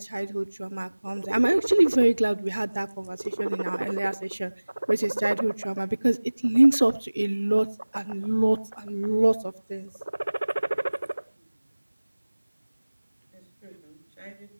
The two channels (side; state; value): both; inverted; correlation -1.00